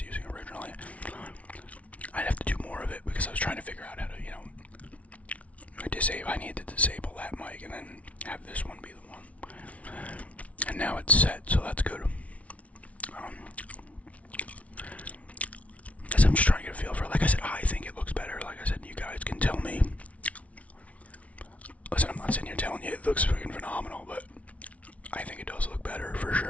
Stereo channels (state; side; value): late; right; 0.066 ms